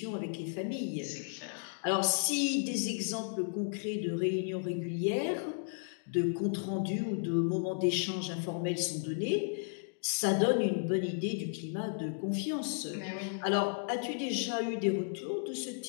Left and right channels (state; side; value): silent; right; digital silence